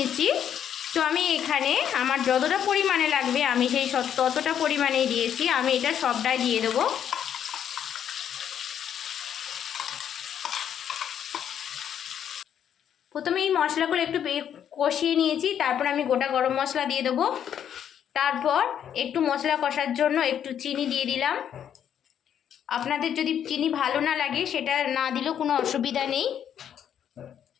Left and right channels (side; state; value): right; quieter; 9.2 dB